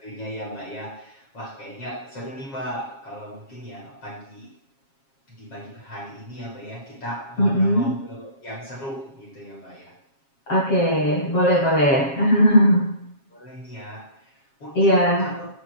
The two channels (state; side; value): late; right; 7.4 ms